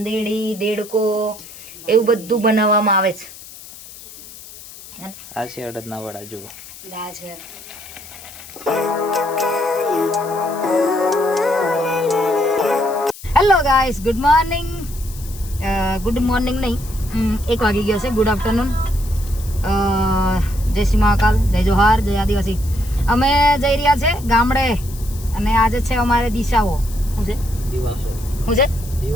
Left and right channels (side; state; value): left; noise; hiss, 17 dB below the sound